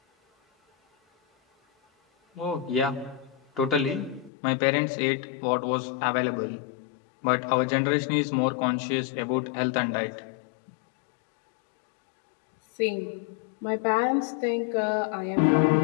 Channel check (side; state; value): right; drops out; at 4.3 s